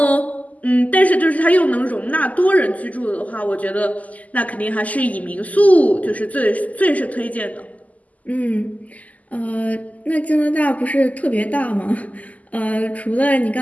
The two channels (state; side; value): late; right; 0.075 ms